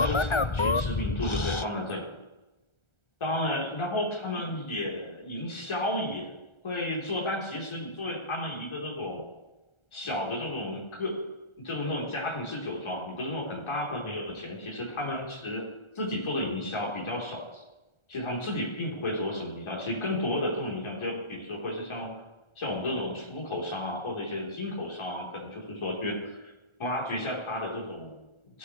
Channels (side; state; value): right; late; 1.4 ms